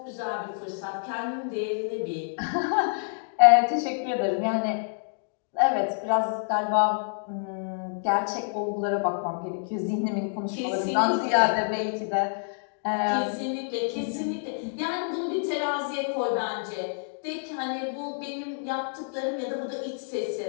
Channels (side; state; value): right; silent; digital silence